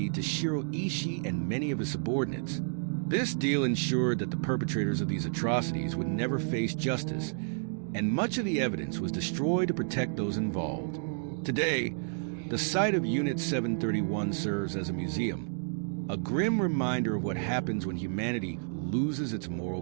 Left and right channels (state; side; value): silent; left; digital silence